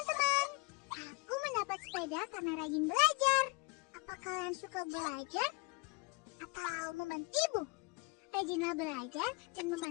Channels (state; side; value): quieter; right; 29.0 dB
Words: aku mendapat sepeda karena rajin belajar. Apa kalian suka belajar atau membantu ibu? Rajinlah belajar dan